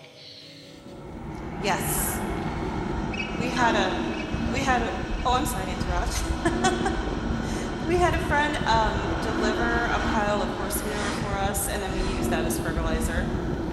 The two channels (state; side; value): identical; both; correlation 1.00